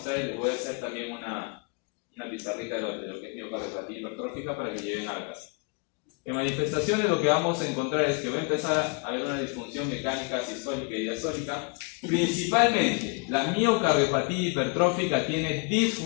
y les voy a hacer también una pizarrita de lo que es miocardiopatía hipertrófica para que lleven a la casa. En manifestaciones lo que vamos a encontrar es que va a empezar a haber una disfunción mecánica sistólica y diastólica. Principalmente, la miocardiopatía hipertrófica tiene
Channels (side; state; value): right; quieter; 34.0 dB